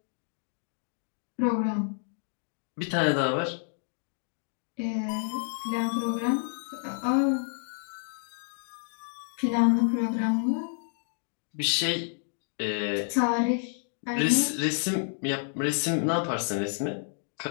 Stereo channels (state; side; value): silent; right; 58 dB below the other